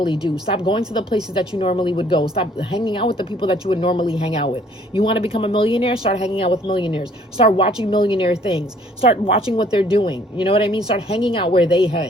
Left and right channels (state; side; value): normal; both; correlation 0.60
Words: do. Stop going to the places that you normally would go. Stop hanging out with the people that you would normally hang out with. You want to become a millionaire? Start hanging out with millionaires. Start watching millionaire things. Start watching what they're doing. You know what I mean? Start hanging out where they